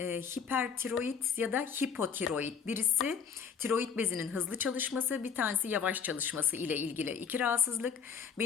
ya da hipotiroid. Birisi tiroid bezinin hızlı çalışması, bir tanesi yavaş çalışması ile ilgili iki rahatsızlık.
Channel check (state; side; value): quieter; right; 6.7 dB